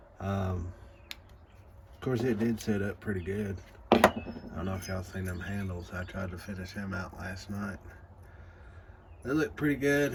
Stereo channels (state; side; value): identical; both; correlation 1.00